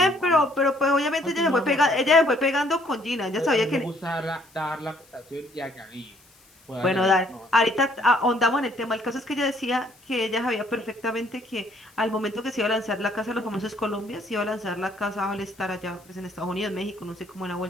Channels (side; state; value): left; noise; hiss, 29 dB below the sound